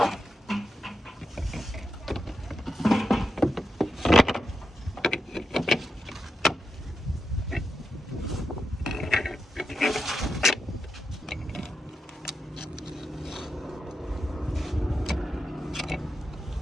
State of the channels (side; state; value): both; normal; correlation 0.87